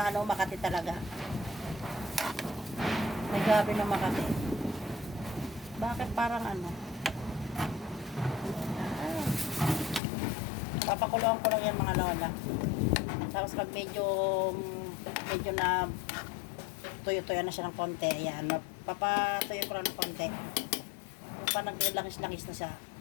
makati talaga. May gabi na makati. Bakit parang Papakuluan ko lang yan mga lola. Tapos pag medyo na tuyo-tuyo na siya ng konti. Ayan, papatuyo ko lang ng konti. Pa naglangis-langis na siya.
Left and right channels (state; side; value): drops out; right; at 10.0 s